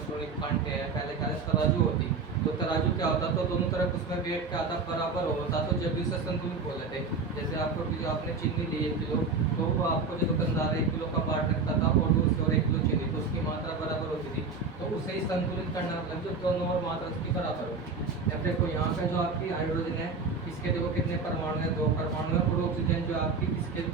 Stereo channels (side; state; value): left; quieter; 4.5 dB